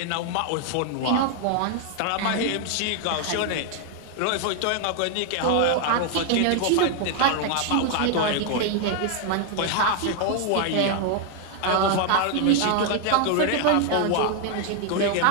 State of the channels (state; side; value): different; both; correlation 0.00